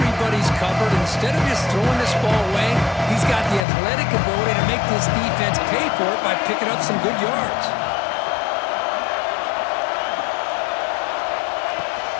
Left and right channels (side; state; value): right; drops out; at 3.7 s